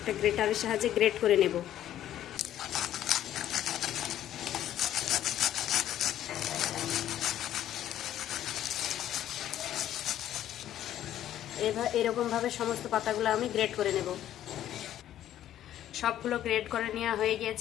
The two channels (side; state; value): right; quieter; 11.9 dB